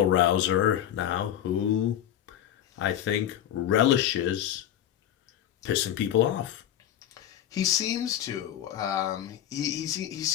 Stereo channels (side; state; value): right; quieter; 11.0 dB